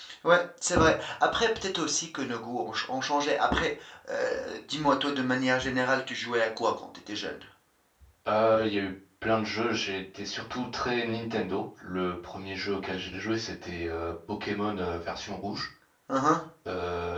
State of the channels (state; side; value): identical; both; correlation 1.00